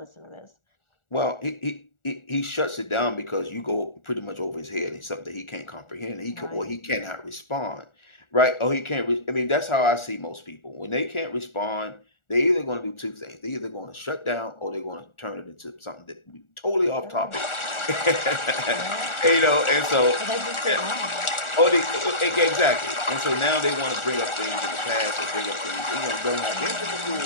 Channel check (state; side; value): late; right; 1.4 ms